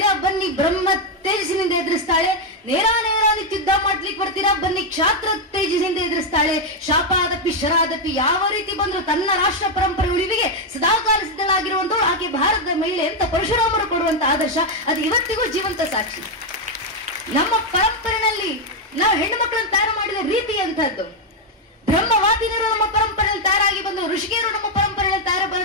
ಬನ್ನಿ ಬ್ರಹ್ಮ ತೇಜಸ್ಸಿನಿಂದ ಎದುರಿಸ್ತಾಳೆ. ನೇರ ಯುದ್ಧ ಮಾಡ್ಲಿಕ್ಕೆ ಬರ್ತೀರಾ, ಬನ್ನಿ ಕ್ಷಾತ್ರ ತೇಜಸ್ಸಿನಿಂದ ಎದುರಿಸ್ತಾಳೆ. ಶಾಪಾದಪಿ ಶರಾದಪಿ, ಯಾವ ರೀತಿ ಬಂದ್ರು ತನ್ನ ರಾಷ್ಟ್ರ ಪರಂಪರೆ ಉಳಿವಿಗೆ ಸದಾಕಾಲ ಸಿದ್ಧಳಾಗಿರುವಂತವಳು ಆಕೆ ಭಾರತದ ಮಹಿಳೆ ಅಂತ ಪರಶುರಾಮರು ಕೊಡುವಂತ ಆದರ್ಶ ಅದು ಇವತ್ತಿಗೂ ಜೀವಂತ ಸಾಕ್ಷಿ. ನಮ್ಮ ಪರಂಪರೆಯಲ್ಲಿ ನಾವು ಹೆಣ್ಣು ಮಕ್ಕಳನ್ನು ತಯಾರು ಮಾಡಿದ ರೀತಿ ಅಂತದ್ದು. ಬ್ರಹ್ಮವಾದಿನರು ನಮ್ಮ ಪರಂಪರೆಯಲ್ಲಿ ತಯಾರಾಗಿ ಬಂದರು, ಋಷಿಕೆಯರು ನಮ್ಮ ಪರಂಪರೆಯಲ್ಲಿ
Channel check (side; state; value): both; normal; correlation 0.02